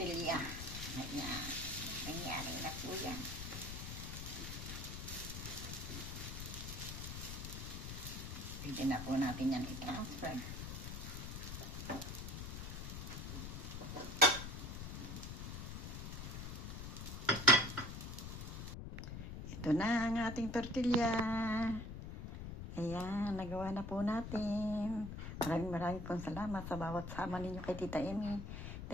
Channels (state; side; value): noise; left; rumble, 7 dB below the sound